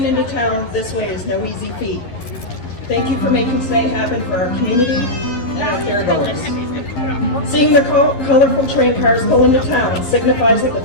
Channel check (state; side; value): late; right; 12 ms